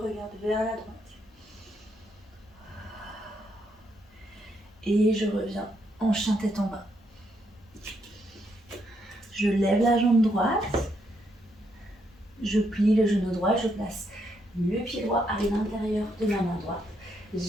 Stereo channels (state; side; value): normal; both; correlation 0.77